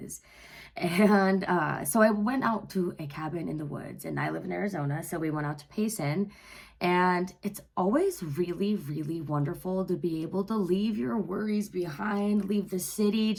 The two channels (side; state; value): both; identical; correlation 1.00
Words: And so I went out to a cabin in the woods, and I live in Arizona, so we went out to Payson. And it's always really, really wonderful to be able to leave your worries behind, leave the city,